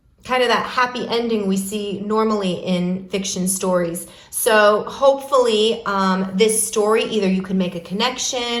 kind of that happy ending we see normally in fiction stories. So hopefully this story, either you can make a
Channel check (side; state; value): both; identical; correlation 1.00